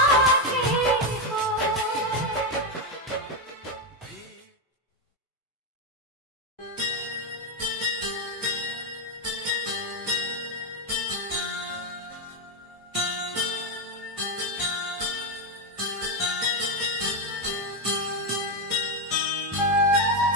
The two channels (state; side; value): normal; both; correlation 0.06